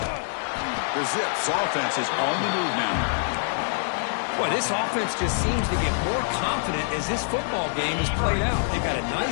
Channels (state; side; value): silent; right; digital silence